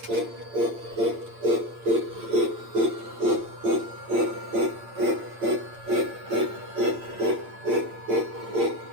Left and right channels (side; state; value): left; late; 8.8 ms